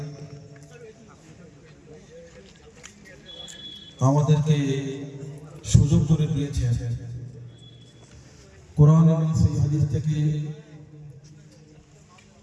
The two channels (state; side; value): identical; both; correlation 1.00